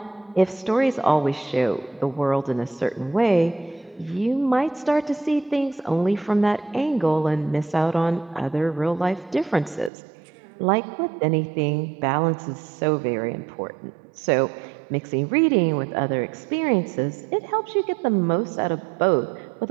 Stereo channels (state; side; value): drops out; left; at 9.9 s